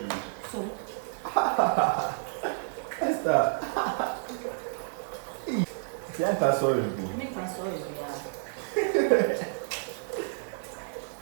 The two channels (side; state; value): left; silent; digital silence